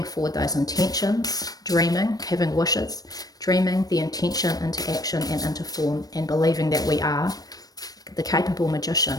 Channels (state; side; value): late; right; 0.18 ms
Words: forward those intentions, dreaming, having wishes, dreaming the intention into action and into form, and believing that we are the capable